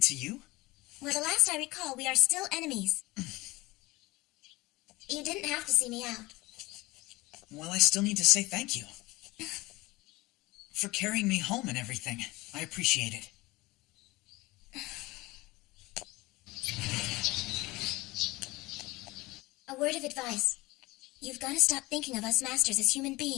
you? Well, the last I recall, we are still enemies. You didn't have to see me out. Well, I still need to say thank you. For carrying me home and everything. I appreciate it. A word of advice. You've got to stop thinking of us masters as human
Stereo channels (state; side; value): quieter; right; 21.2 dB